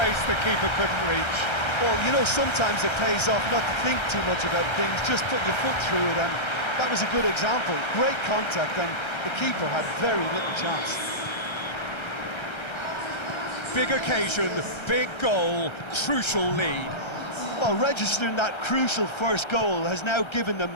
the keeper couldn't reach. Well, you know, sometimes it pays off not to think too much about things, just put your foot through it, and that was a good example. Great contact, and the keeper had very little chance. Big occasion, big goal, crucial lead. Well, registering that crucial first goal has now given them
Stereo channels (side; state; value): right; late; 1.3 ms